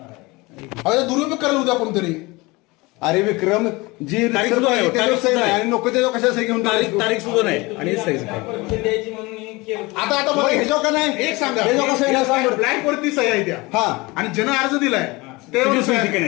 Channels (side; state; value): right; quieter; 23.5 dB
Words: अरे दुरुपयोग करायला उद्या कोणतरी अरे विक्रम जी तारीख सुद्धा आहे, त्याच्यावर तारीख सही सुद्धा नाही आहे. आणि नको त्याच्यावर कशा सही घेऊन तारीख सुद्धा नाही आणि सहीच नाही. आता मग ह्याच्यावर का नाही एक सांगा ह्याच्यावर कसं आहे सांग बरं. ब्लँक वरती सही आहे त्या हा आणि ज्यानं अर्ज दिलाय त्याची ते सही ठिकाणी